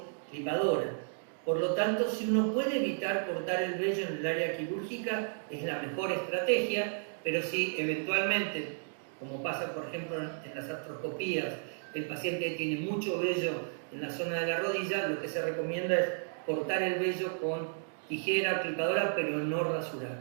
clipadora. Por lo tanto, si uno puede evitar cortar el vello en el área quirúrgica, es la mejor estrategia, pero si eventualmente, como pasa por ejemplo en las artroscopías, el paciente tiene mucho vello en la zona de la rodilla, lo que se recomienda es cortar el vello con tijera o clipadora, pero no rasurar.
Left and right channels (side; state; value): left; silent; digital silence